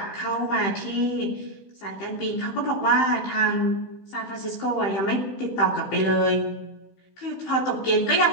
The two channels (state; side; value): late; right; 15 ms